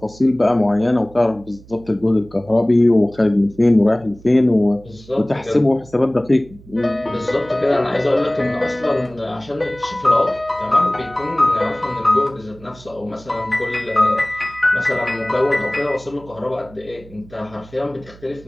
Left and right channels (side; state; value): right; noise; hum, 22 dB below the sound